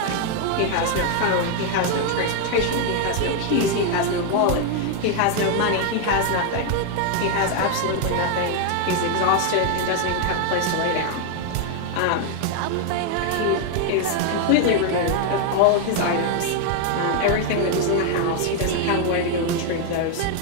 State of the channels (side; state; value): both; different; correlation 0.00